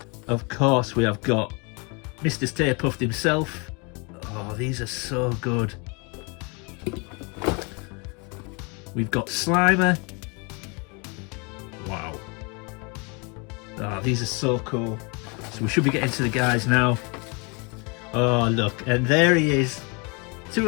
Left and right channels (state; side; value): quieter; right; 31.6 dB